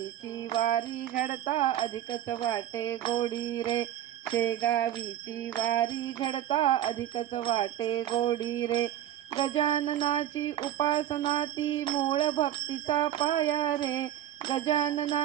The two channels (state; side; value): quieter; left; 11.9 dB